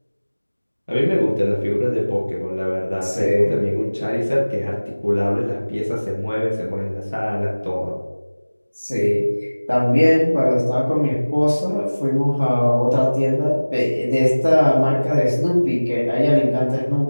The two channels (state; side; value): inverted; both; correlation -1.00